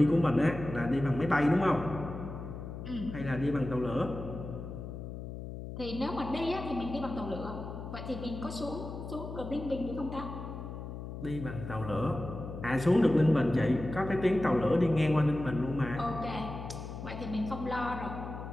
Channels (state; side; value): noise; left; hum, 9 dB below the sound